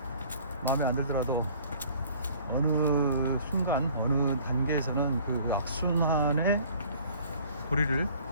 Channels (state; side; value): inverted; both; correlation -0.52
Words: 마음에 안 들더라도 어느 순간, 어느 단계에서는 그 악순환의 고리를